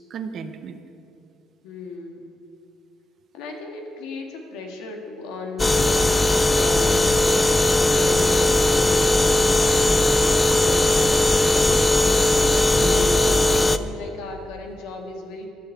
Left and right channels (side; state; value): both; normal; correlation 0.94